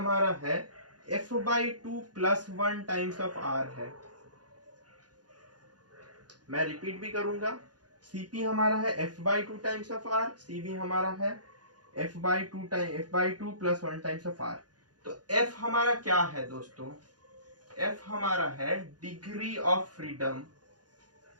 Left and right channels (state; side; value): late; left; 0.69 ms